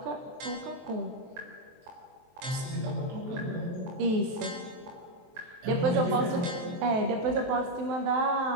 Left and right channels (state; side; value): late; left; 23 ms